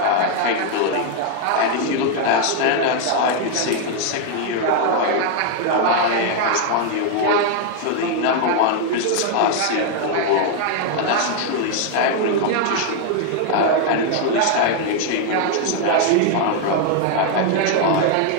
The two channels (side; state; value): both; different; correlation 0.00